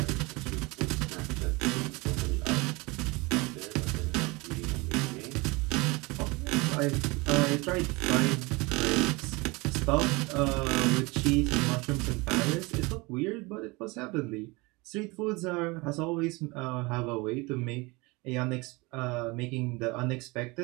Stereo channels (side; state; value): left; quieter; 25.1 dB